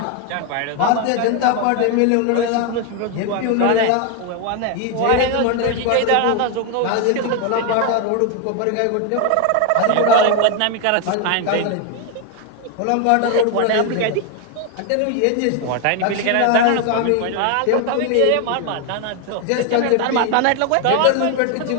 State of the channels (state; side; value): different; both; correlation 0.01